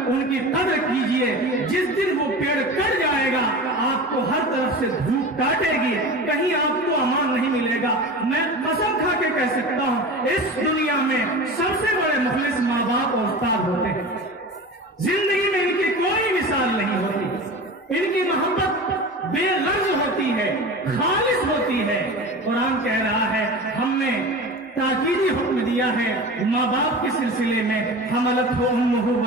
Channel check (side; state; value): both; normal; correlation 0.32